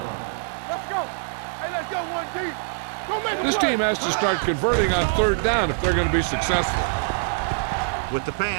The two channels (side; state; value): left; silent; digital silence